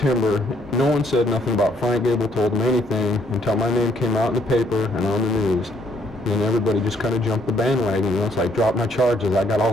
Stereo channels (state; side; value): normal; both; correlation 0.68